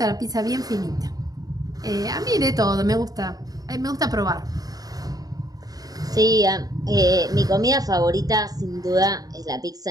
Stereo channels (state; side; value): late; left; 0.18 ms